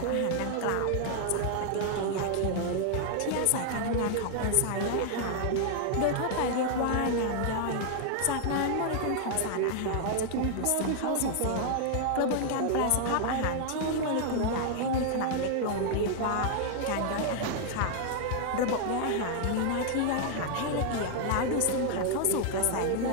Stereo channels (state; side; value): different; both; correlation 0.00